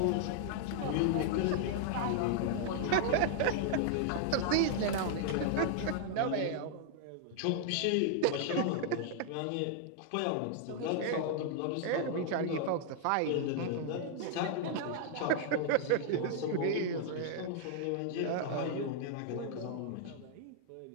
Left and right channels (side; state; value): both; different; correlation -0.01